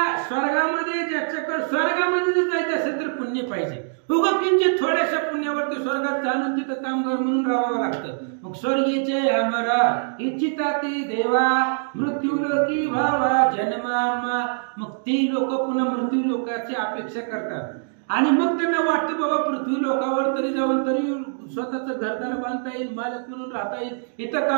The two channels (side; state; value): left; silent; digital silence